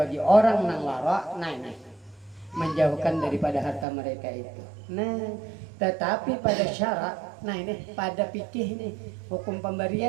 orang nang wara nih menjauhkan daripada harta mereka itu. Nah, tetapi pada syarak, nah ini pada fikih nih hukum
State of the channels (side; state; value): left; drops out; at 3.9 s